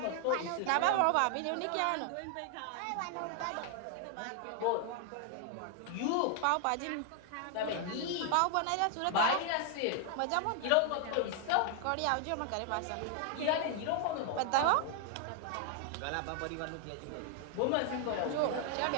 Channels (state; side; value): different; both; correlation 0.00